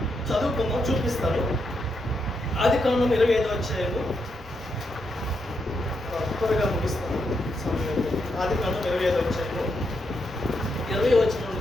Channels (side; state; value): both; normal; correlation 0.81